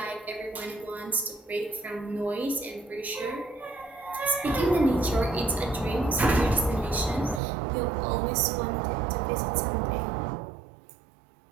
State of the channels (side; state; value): left; drops out; at 7.4 s